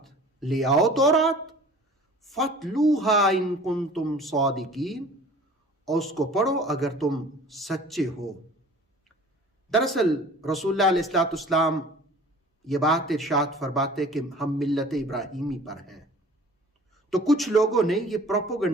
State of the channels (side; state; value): both; normal; correlation 0.46